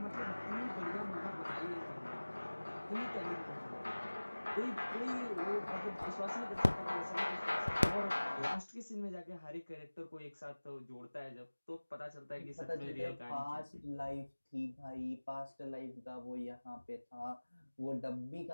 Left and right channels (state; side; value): inverted; both; correlation -1.00